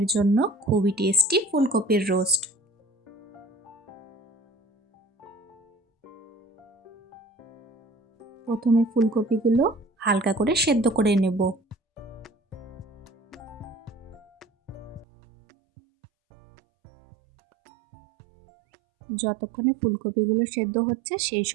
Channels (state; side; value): drops out; left; at 15.1 s